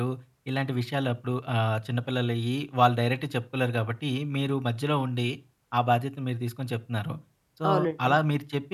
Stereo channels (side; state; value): both; identical; correlation 1.00